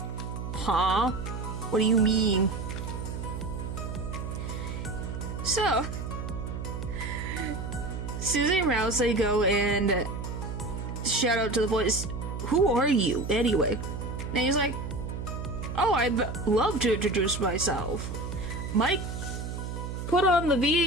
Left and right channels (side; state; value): right; noise; hum, 6 dB below the sound